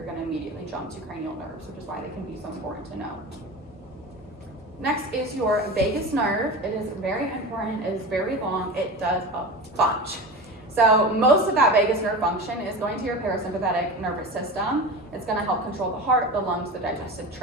going to immediately jump to cranial nerves, which is why they can be so important to know. Next is your vagus nerve. It is very important, it is very long, it does a bunch. So most of that vagus nerve function is going to your parasympathetic nervous system. It's going to help control the heart, the lungs, the digestive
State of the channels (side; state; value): both; normal; correlation 0.29